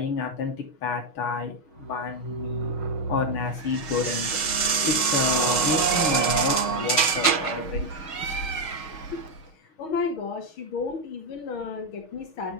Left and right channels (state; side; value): late; right; 6.4 ms